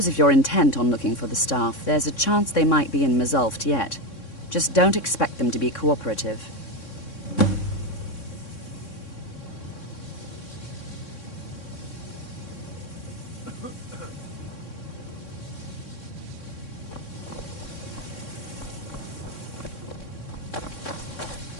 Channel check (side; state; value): right; late; 3.6 ms